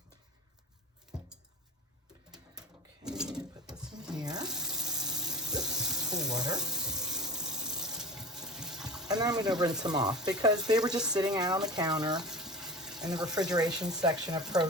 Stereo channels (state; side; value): normal; both; correlation 0.33